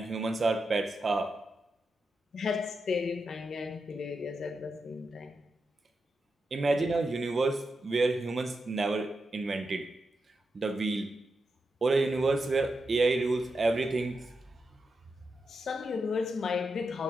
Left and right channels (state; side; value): normal; both; correlation 0.87